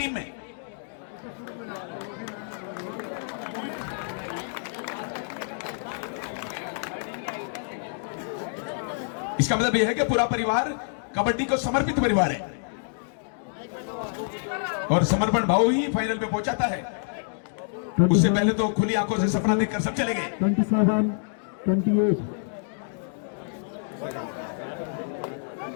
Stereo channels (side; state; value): right; silent; digital silence